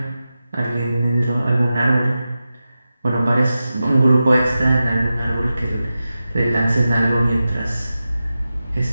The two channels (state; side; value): inverted; both; correlation -0.93